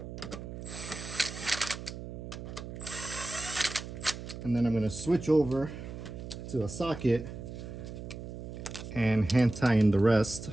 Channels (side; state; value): right; noise; hum, 9 dB below the sound